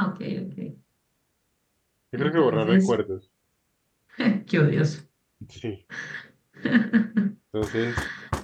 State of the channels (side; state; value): both; identical; correlation 1.00